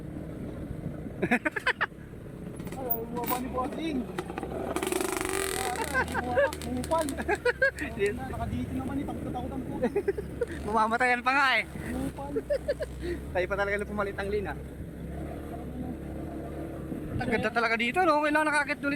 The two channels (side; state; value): both; identical; correlation 1.00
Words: Ay, bumaba ni Bossing. Bumupal. Nakadito naman eh, takot-takotan po. Mamamatayan pa nga eh. Bumupal. Tayo pa talaga na pumalit ang lina. Ang ganda talaga dito, no? Kailangan nakakit